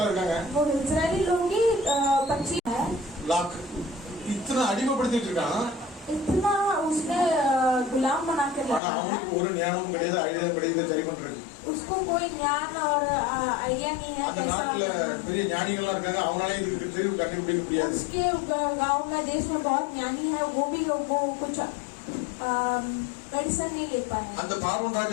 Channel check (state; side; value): drops out; right; at 8.8 s